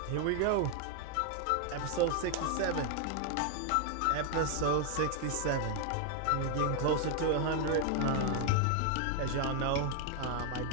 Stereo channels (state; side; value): different; both; correlation 0.00